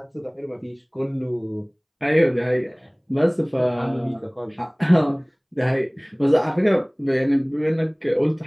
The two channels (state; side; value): identical; both; correlation 1.00